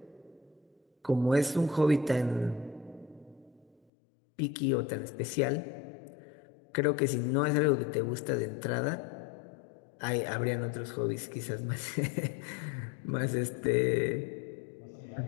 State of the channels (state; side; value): drops out; right; at 3.8 s